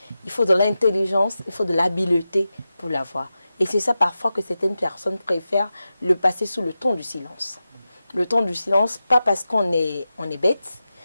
il faut de l'intelligence, il faut de l'habileté pour l'avoir. Et c'est ça parfois que certaines personnes préfèrent le passer sous le ton du silence. Le ton du silence, pas parce qu'on est bête,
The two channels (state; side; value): inverted; both; correlation -0.92